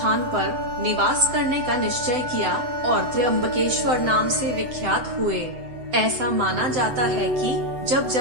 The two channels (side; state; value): left; late; 8.0 ms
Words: पर निवास करने का निश्चय किया और त्र्यंबकेश्वर नाम से विख्यात हुए। ऐसा माना जाता है कि जब